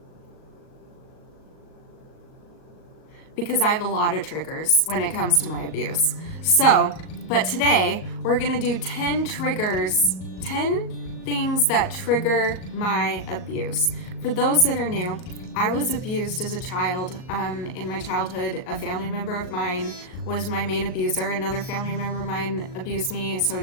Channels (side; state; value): right; late; 39 ms